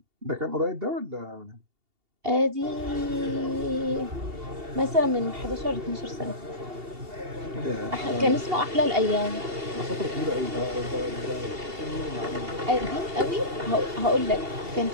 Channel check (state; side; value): late; left; 2.8 ms